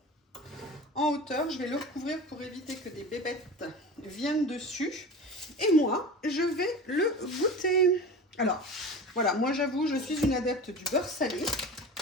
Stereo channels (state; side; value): normal; both; correlation 0.33